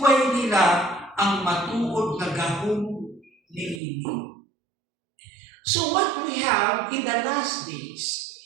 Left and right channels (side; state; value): left; drops out; at 3.8 s